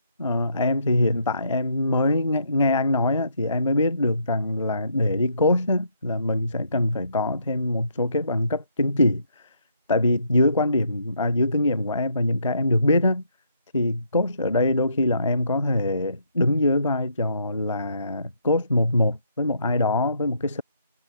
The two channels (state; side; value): inverted; both; correlation -0.71